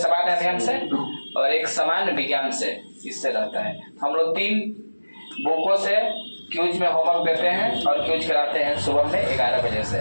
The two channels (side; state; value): both; inverted; correlation -1.00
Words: अध्ययन से और एक सामान्य विज्ञान से इससे रहता है। हम लोग 3 बुकों से क्यूज में होमवर्क देते हैं और क्यूज कराते हैं सुबह में 11 बजे से।